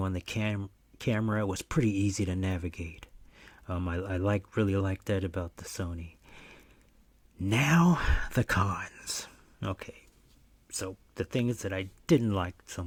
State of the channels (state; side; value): identical; both; correlation 1.00